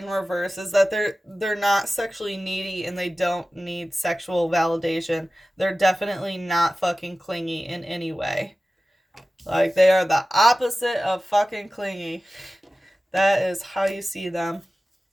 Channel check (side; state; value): both; normal; correlation 0.96